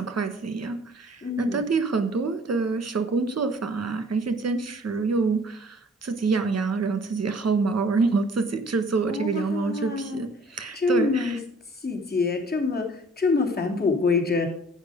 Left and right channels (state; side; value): normal; both; correlation 0.54